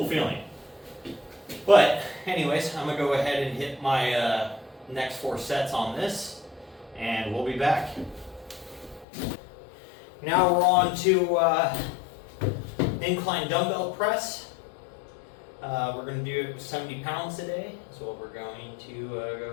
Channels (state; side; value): drops out; right; at 9.1 s